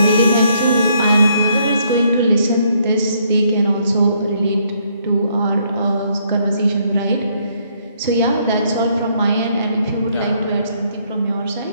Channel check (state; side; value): inverted; both; correlation -0.69